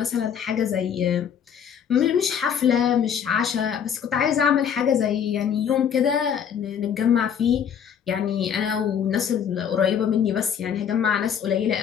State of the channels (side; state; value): right; quieter; 8.1 dB